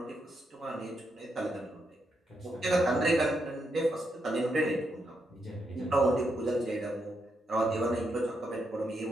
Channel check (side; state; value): both; normal; correlation 0.81